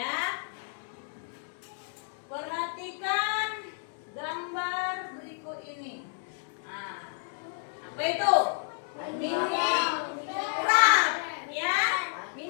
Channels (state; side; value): silent; right; 57 dB below the other